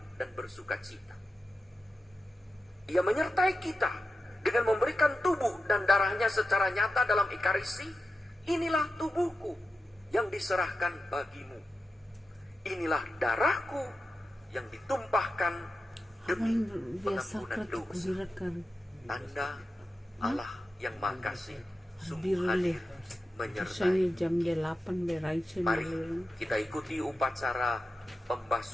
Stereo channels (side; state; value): both; normal; correlation 0.91